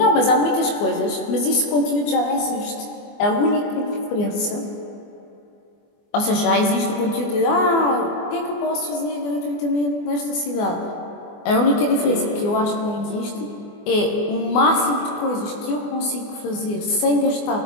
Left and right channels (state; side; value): late; right; 24 ms